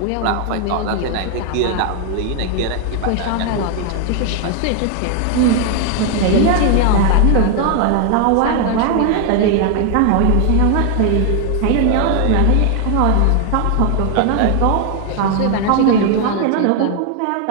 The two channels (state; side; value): different; both; correlation 0.00